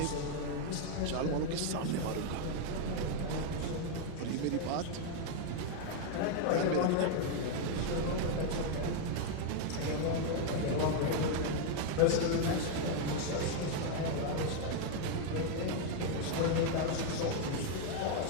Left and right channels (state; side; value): different; both; correlation 0.01